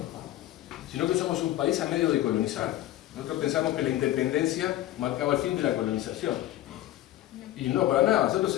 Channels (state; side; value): quieter; right; 14.4 dB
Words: sino que somos un país a medio de colonizar. Nosotros pensamos que la independencia marcaba el fin de la colonización. Y no, para nada, nosotros